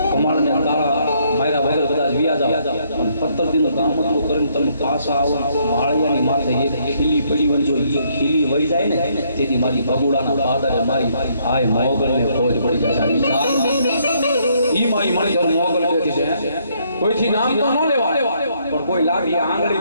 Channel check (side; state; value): both; inverted; correlation -0.70